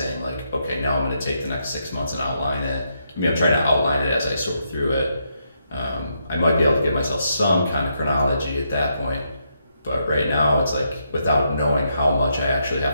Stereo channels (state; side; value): inverted; both; correlation -0.79